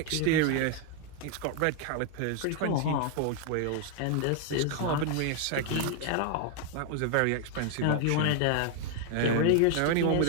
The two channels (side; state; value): both; different; correlation 0.00